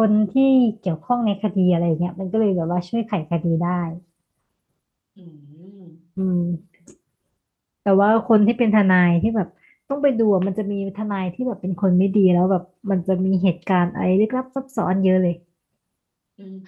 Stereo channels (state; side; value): identical; both; correlation 1.00